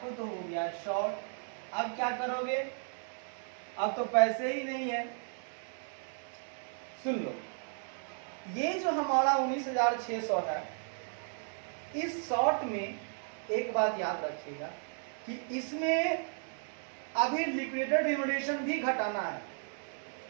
तो हो गया शॉर्ट। अब क्या करोगे, अब तो पैसे ही नहीं है। सुन लो, ये जो हमारा 19,600 है, इस शॉर्ट में एक बात याद रखिएगा कि इसमें अभी लिक्विडेटेड रिम्यूनरेशन भी घटाना है,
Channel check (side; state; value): left; silent; 55 dB below the other